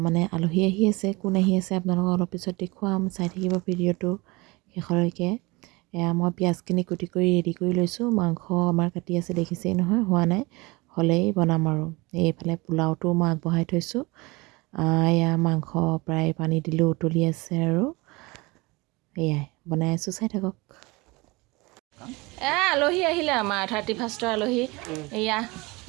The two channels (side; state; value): left; quieter; 24.4 dB